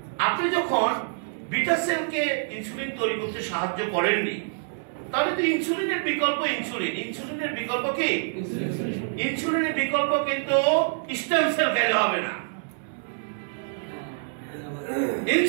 আপনি যখন বিটা সেলকে ইনসুলিন তৈরি করতে সাহায্য করেননি, তাহলে তো ইনসুলিনের বিকল্প ইনসুলিন। ইনসুলিনের বিকল্প কি? ইনসুলিনের বিকল্প কিন্তু স্টেম সেল খেলে হবে না।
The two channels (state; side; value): silent; left; digital silence